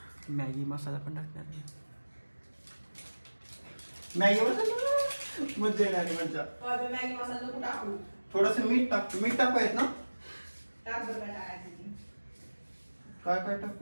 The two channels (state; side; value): inverted; both; correlation -1.00